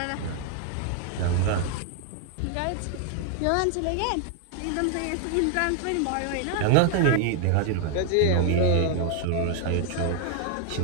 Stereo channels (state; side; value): different; both; correlation 0.00